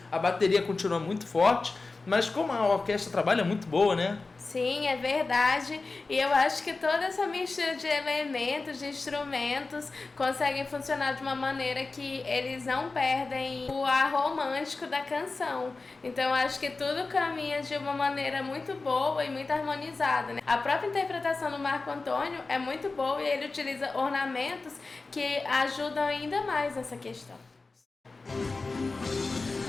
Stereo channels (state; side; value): quieter; right; 3.7 dB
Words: A bateria continua muito forte, mas como a orquestra trabalha muito boa, né? Sim, é verdade. E eu acho que toda essa mistura de elementos, de instrumentos, conseguem funcionar de uma maneira que eles não perdem o ar romântico da canção. Então eu acho que tudo caminha de uma maneira muito boa e muito harmonizada, né? A própria interpretação do Marco Antônio é muito boa e ele utiliza ornamentos que ajudam ainda mais nessa questão.